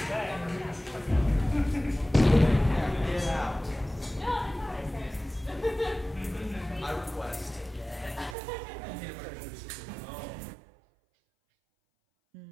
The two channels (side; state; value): left; drops out; at 8.3 s